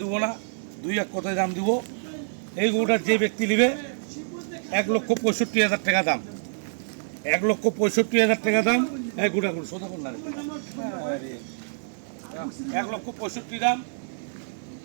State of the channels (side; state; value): left; silent; 61 dB below the other